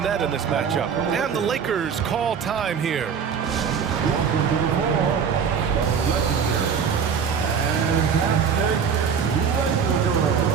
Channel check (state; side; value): quieter; left; 6.8 dB